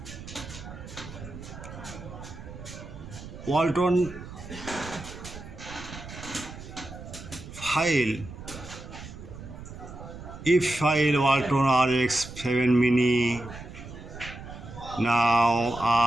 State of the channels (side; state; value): right; noise; rumble, 13 dB below the sound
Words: Walton file, if file Walton Rx7 mini, now